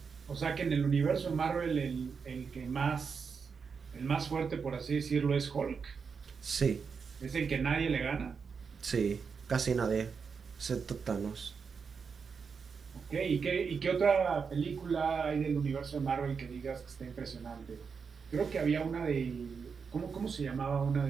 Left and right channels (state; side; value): quieter; left; 5.7 dB